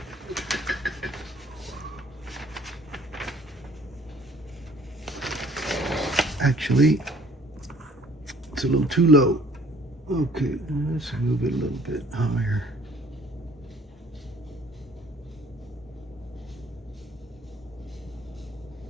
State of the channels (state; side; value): normal; both; correlation 0.57